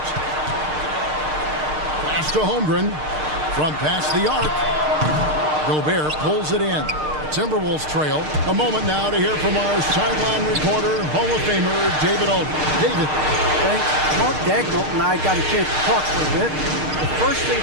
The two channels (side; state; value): left; late; 6.5 ms